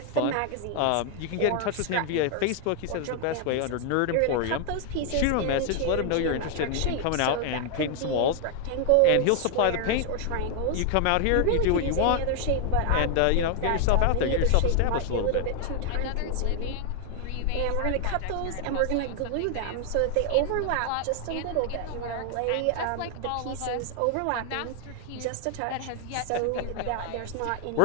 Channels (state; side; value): different; both; correlation 0.00